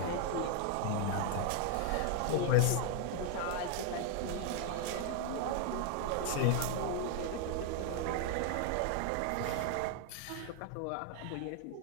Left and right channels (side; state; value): both; different; correlation 0.00